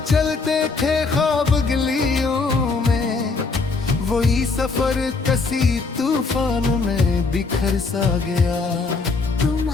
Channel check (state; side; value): quieter; right; 4.1 dB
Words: चलते थे ख्वाब गलियों में, वही सफर कसी तूफान में बिखर सा गया।